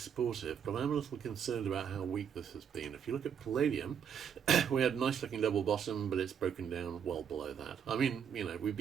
but I'm a little concerned about how weak this has been. If you look at palladium, we had a nice looking double bottom, but it's broken down well below that. I mean, we've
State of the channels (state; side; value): quieter; left; 7.9 dB